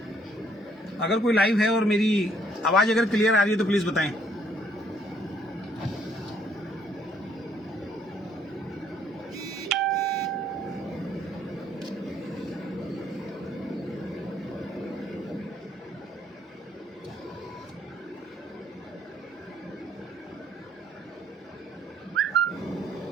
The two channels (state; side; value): normal; both; correlation 0.66